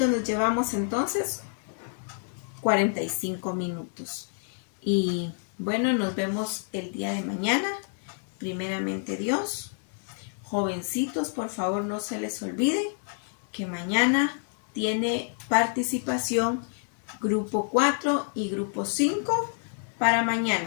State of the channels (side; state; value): right; silent; 59 dB below the other